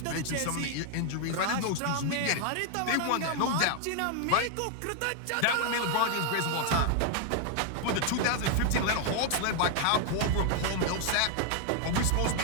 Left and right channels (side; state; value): both; different; correlation 0.00